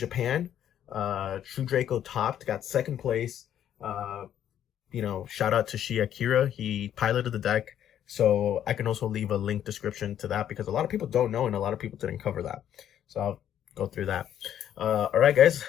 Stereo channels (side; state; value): right; quieter; 10.4 dB